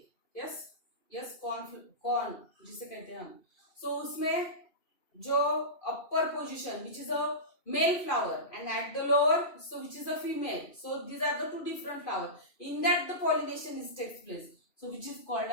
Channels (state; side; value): late; right; 2.5 ms